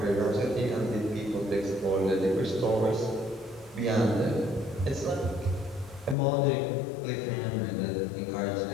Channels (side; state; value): right; drops out; at 6.2 s